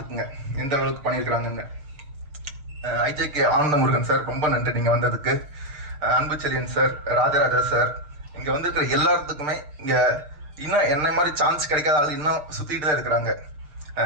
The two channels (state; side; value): late; left; 6.7 ms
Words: எந்த அளவுக்கு பண்ணியிருக்கிறாங்கன்னு. ஐஜேகே ஆனந்த முருகன் சார் ரொம்ப நன்றி நீங்க வந்ததுக்கு. அன்பு செல்லியன் சார், ராஜராஜா சார், இங்க வந்திருக்கிற எல்லாத்துக்குமே இங்க இன்னும் என்ன மாதிரி சான்ஸ் கிடைக்காத ஆள் இன்னும் சுத்திட்டு தான் இருக்கிறாங்க.